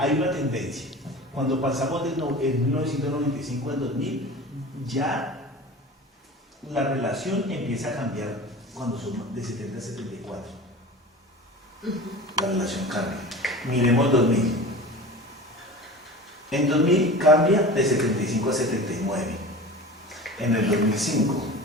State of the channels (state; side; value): normal; both; correlation 0.35